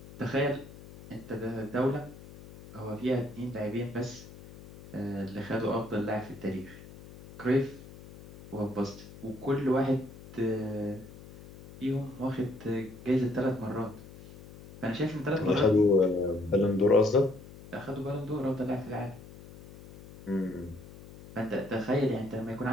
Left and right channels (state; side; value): noise; left; hum, 17 dB below the sound